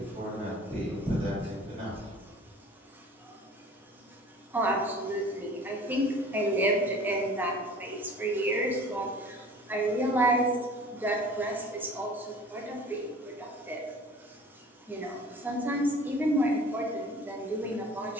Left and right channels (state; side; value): normal; both; correlation 0.45